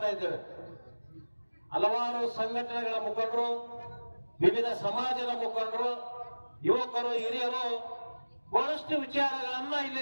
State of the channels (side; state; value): both; inverted; correlation -1.00